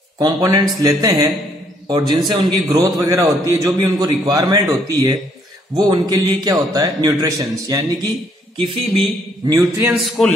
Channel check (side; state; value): both; normal; correlation 0.67